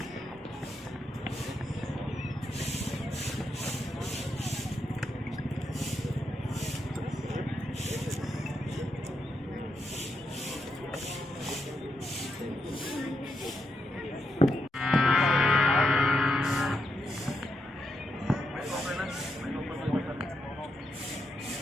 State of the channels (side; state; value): both; normal; correlation 0.83